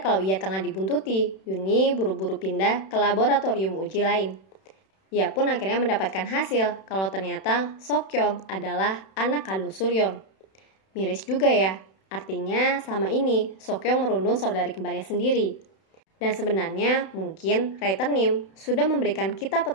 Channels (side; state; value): right; late; 31 ms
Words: kalau ia tengah dibuntuti, Yuni buru-buru pindah ke laboratorium uji lain. Ia pun akhirnya mendapatkan hasil kalau ternyata Sokyong adalah anak kandung Suryon. Miris juga ya, artinya selama ini Sokyong merundung saudari kembarnya sendiri. Dan sebenarnya mungkin writer Nim sudah memberikan kita